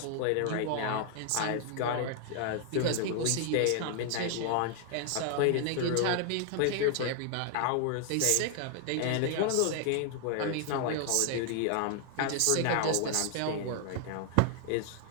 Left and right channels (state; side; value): different; both; correlation 0.00